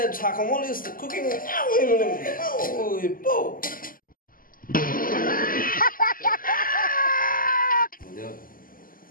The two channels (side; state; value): right; late; 0.41 ms